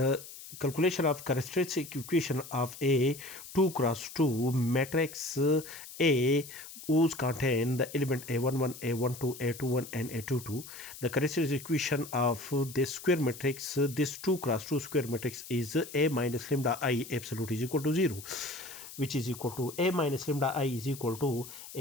calculation of characteristic equation of a 2 cross 2 matrix A whose contain the element a11, a12, a21 and a22. The characteristic equation of this square matrix, this 2 cross 2 square matrix, is a minus lambda I absolute is equal to 0, which is equal to a minus lambda I is equal to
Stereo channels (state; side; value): noise; left; hiss, 14 dB below the sound